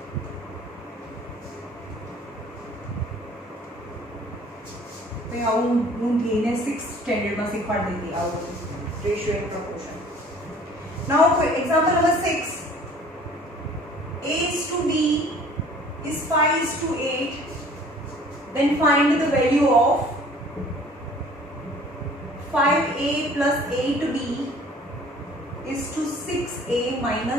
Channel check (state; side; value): normal; both; correlation 0.51